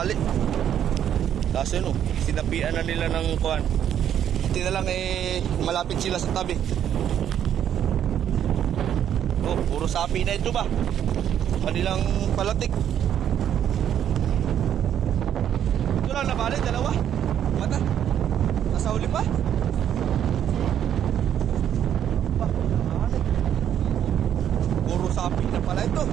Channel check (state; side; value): quieter; left; 9.8 dB